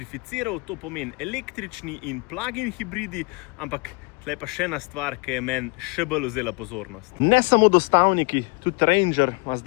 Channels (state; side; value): quieter; right; 29.9 dB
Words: to pomeni električni in plug-in hibridi, ampak tle pa še ena stvar, ki je meni še bolj vzela pozornost. Ne samo dostavniki, tudi Ranger ima